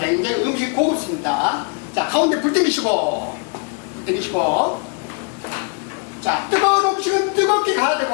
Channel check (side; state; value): right; quieter; 35.5 dB